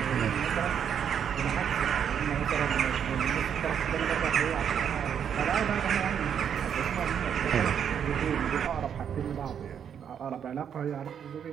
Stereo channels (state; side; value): quieter; left; 8.3 dB